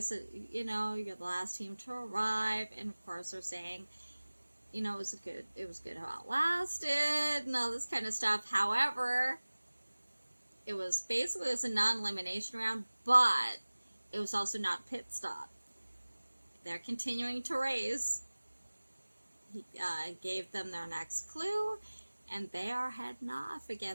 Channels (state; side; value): inverted; both; correlation -1.00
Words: you know, you're the last team to arrive, and of course they're saying, you know, it was good how it lasted, and all this kind of stuff. However, it was a non-elimination round, but it was also not a pit stop. They're continuing to race. He gave them their next clue, and they are heading off